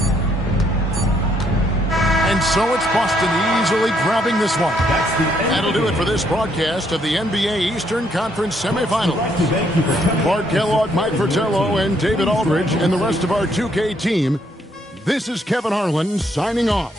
And so it's Boston easily grabbing this one. That'll do it for this broadcast of the NBA Eastern Conference Semifinals. Bart Kellogg, Mike Fratello, and David Aldridge, and the rest of our 2K team. This is Kevin Harlan signing off.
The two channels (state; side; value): normal; both; correlation 0.71